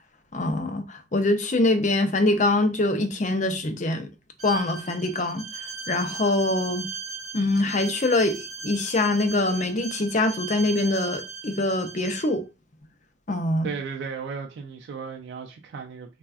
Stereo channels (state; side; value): normal; both; correlation 0.42